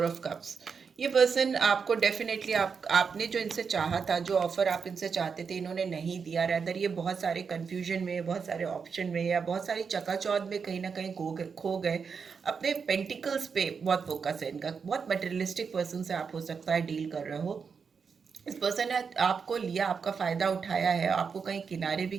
ऑफ कप्स। ये पर्सन आपको डेफिनेटली, आपने जो इनसे चाहा था, जो ऑफर आप इनसे चाहते थे, इन्होंने नहीं दिया। रैदर ये बहुत सारे कंफ्यूजन में, बहुत सारे ऑप्शन में या बहुत सारी चकाचौंध में कहीं ना कहीं खो गए। अपने पेंटिकल्स पे बहुत फोकस है इनका। बहुत मटेरियलिस्टिक पर्सन से आप हो सकता है डील कर रहे हो। इस पर्सन ने आपको लिया, आपका फ़ायदा उठाया है, आपको कहीं किनारे भी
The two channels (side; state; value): left; quieter; 5.8 dB